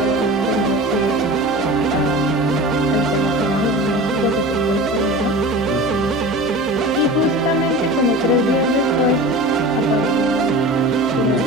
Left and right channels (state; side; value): normal; both; correlation 0.35